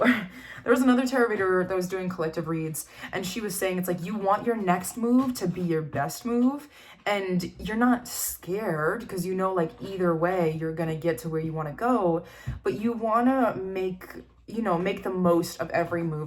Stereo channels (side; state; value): both; identical; correlation 1.00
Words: There was another tarot reader that was doing collective reads, and she was saying it's like you want your next move to be your best move, and you're not scared because like either way you're gonna get to where you want to go, but you want to make the most of every